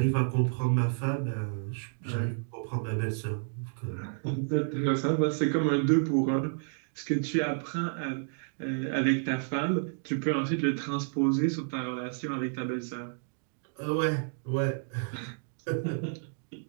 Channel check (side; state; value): left; silent; digital silence